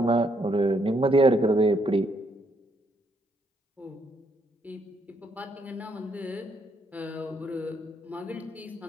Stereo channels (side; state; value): both; normal; correlation 0.73